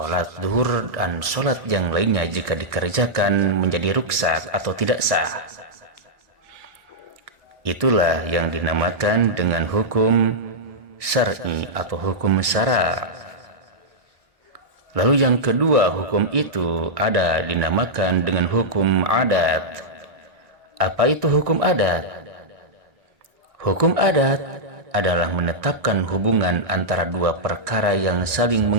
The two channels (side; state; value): left; late; 1.7 ms